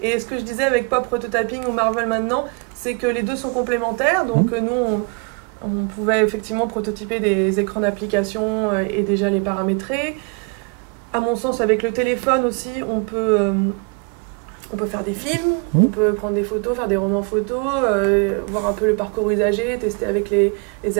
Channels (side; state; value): left; quieter; 32.6 dB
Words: ce que je disais avec Pop Prototyping ou Marvel maintenant, c'est que les deux sont complémentaires. Donc nous, on pouvait effectivement prototyper des écrans d'application et déjà les paramétrer. À mon sens, avec le téléphone aussi, on peut faire des films, on peut prendre des photos, faire des romans photos, voir un peu le parcours usager, tester avec les